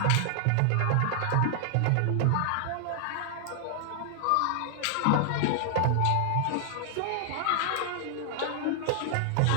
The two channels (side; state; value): both; different; correlation 0.00